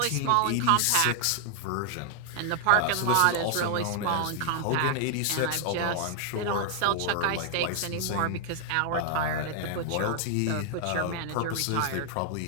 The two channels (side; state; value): both; different; correlation 0.00